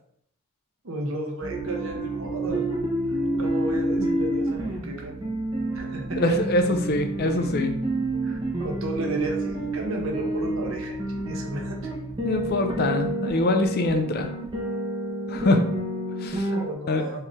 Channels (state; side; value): normal; both; correlation 0.50